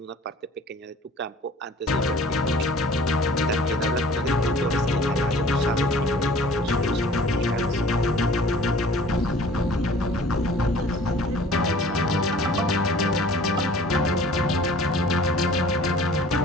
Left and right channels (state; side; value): normal; both; correlation 0.49